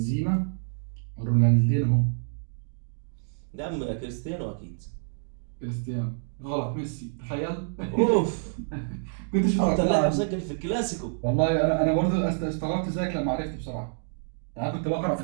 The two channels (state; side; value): silent; left; digital silence